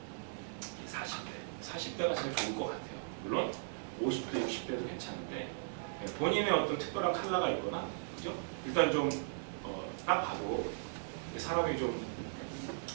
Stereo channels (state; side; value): silent; left; 53 dB below the other